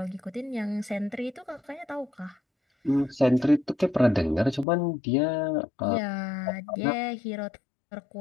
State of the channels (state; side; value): drops out; right; at 4.7 s